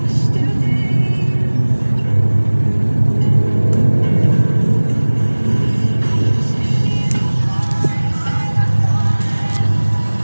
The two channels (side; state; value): both; inverted; correlation -1.00